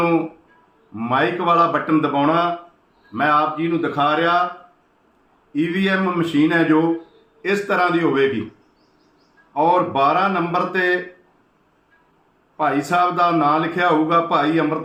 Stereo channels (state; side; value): identical; both; correlation 1.00